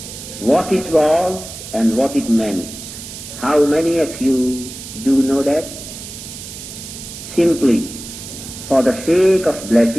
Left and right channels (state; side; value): noise; right; hiss, 12 dB below the sound